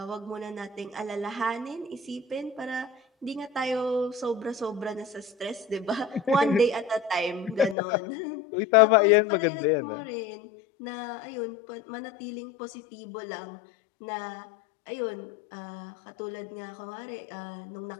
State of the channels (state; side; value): drops out; right; at 7.8 s